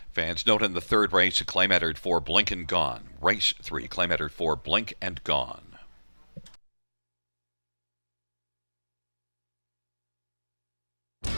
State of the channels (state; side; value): inverted; both; correlation -1.00